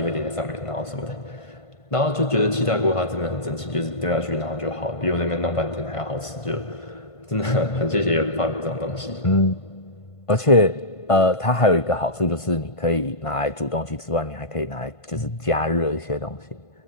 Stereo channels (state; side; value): late; right; 1.5 ms